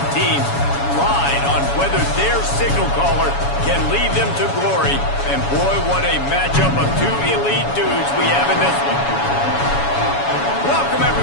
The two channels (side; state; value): right; late; 7.1 ms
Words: teams ride on whether their signal caller can lead them to glory. And boy, what a matchup of two elite dudes we have in this one. Welcome,